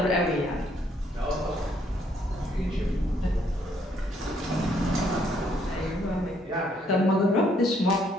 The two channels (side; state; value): both; normal; correlation 0.69